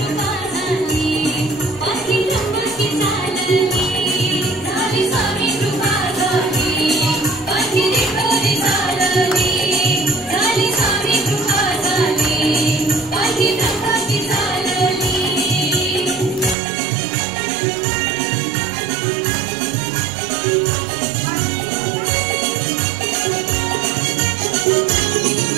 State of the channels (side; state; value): left; drops out; at 16.6 s